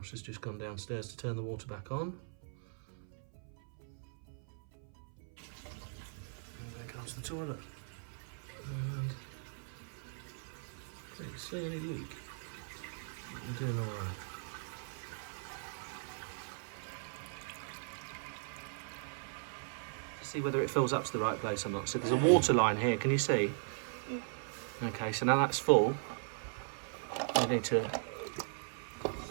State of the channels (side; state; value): left; silent; 52 dB below the other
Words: has just gone downstairs to turn the water back on. And there comes the toilet. And don't see any leak. We're doing all right. See whether it fills up to the right place or not. So there's a water line here, can you see? Yeah. Okay, so now that's full. You need to...